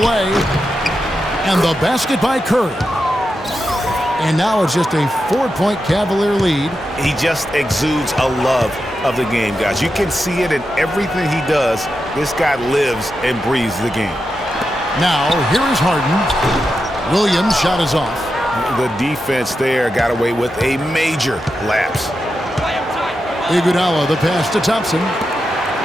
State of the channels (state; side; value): normal; both; correlation 0.88